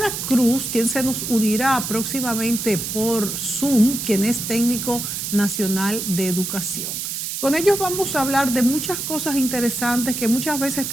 Cruz, quien se nos unirá próximamente por Zoom, quien es técnico nacional de educación. Con ellos vamos a hablar de muchas cosas interesantes que muchas veces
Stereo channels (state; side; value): noise; right; hiss, 4 dB below the sound